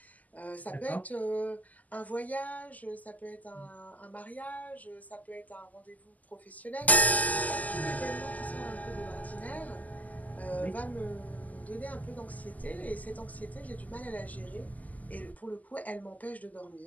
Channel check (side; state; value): right; late; 0.078 ms